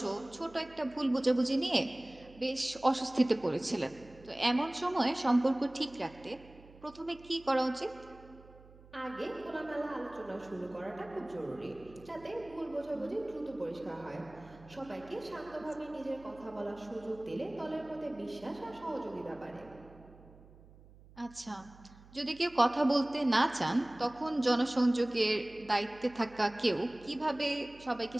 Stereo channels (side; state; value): right; noise; hum, 22 dB below the sound